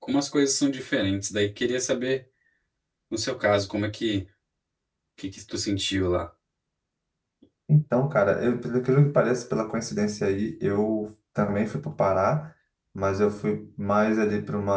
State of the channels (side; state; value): both; identical; correlation 1.00